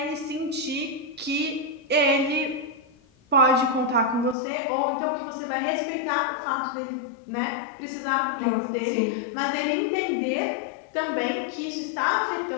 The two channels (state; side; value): drops out; right; at 4.4 s